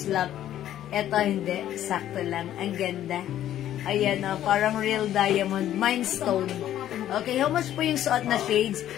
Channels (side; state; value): right; quieter; 11.9 dB